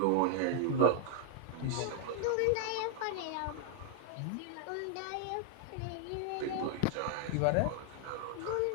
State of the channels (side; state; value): both; different; correlation 0.00